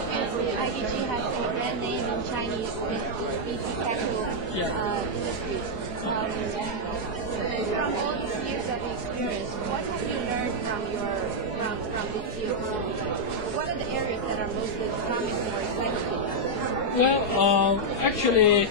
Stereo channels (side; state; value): right; late; 4.8 ms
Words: IDG has a brand name in Chinese VC capital industry. From all these years of experience, what have you learned from this year? What are the areas that are most promising or exciting? Well, actually,